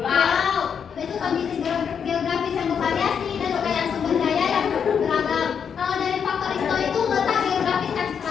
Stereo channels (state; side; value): quieter; right; 7.2 dB